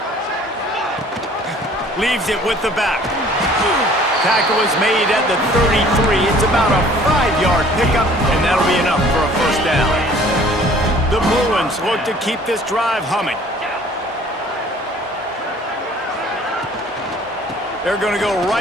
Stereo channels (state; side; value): normal; both; correlation 0.53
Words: Leaves it with the back. Tackle is made at the 33. It's about a 5-yard pickup, and that'll be enough for a first down. The Bruins look to keep this drive humming. They're going to go